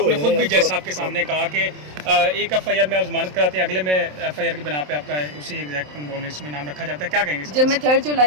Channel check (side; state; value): left; late; 27 ms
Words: نے خود بھی جج صاحب کے سامنے کہا کہ ایک ایف آئی آر میں آپ ضمانت کراتے ہیں، اگلے میں ایف آئی آر کی بنا پہ آپ کا اسی ایگزیکٹ لسٹ میں نام رکھا جاتا ہے، کیا کہیں گے؟ جب میں 3